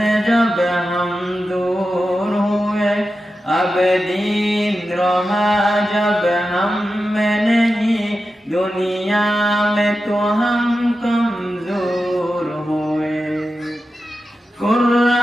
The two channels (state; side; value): normal; both; correlation 0.91